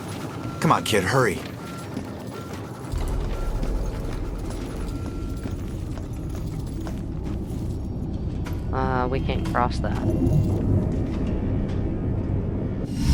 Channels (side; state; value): both; identical; correlation 1.00